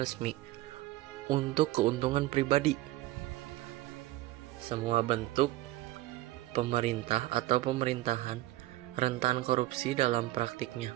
untuk keuntungan pribadi. Semua bentuk pemerintah atau pemerintahan rentan korupsi dalam praktiknya.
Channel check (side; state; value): left; quieter; 16.8 dB